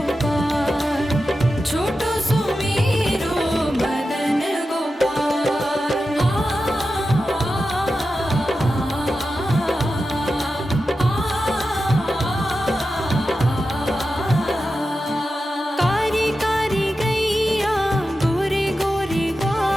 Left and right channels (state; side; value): normal; both; correlation 0.91